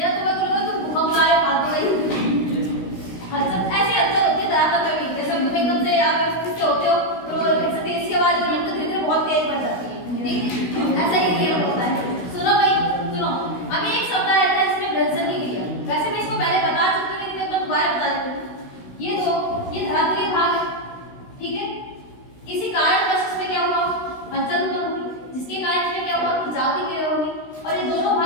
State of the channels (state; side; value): late; right; 16 ms